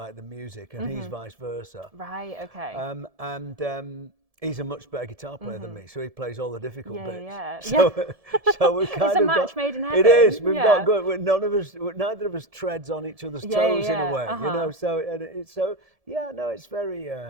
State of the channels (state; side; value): late; left; 1.7 ms